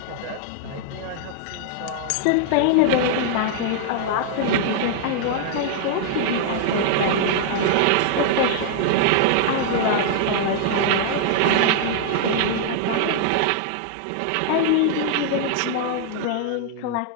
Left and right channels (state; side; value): different; both; correlation -0.01